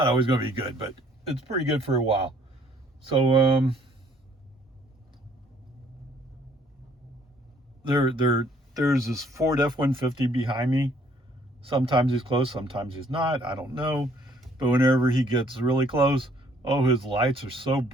always going to be good, but it's pretty good for a while. So there's this Ford F-150 behind me. Sometimes he's close, sometimes he's not. I don't know. But whenever he gets really close, oh, his lights are so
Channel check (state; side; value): normal; both; correlation 0.62